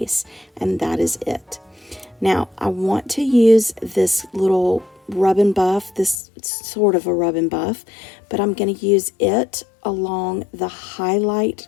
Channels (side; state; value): right; drops out; at 6.2 s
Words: And that is it. Now, I want to use this little rub and buff, this sort of a rub and buff, but I'm going to use it along the highlight